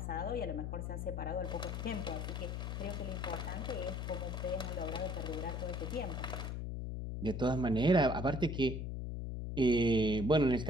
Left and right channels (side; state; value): left; noise; hum, 4 dB below the sound